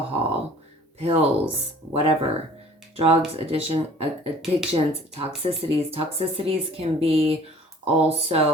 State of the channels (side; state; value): both; normal; correlation 0.50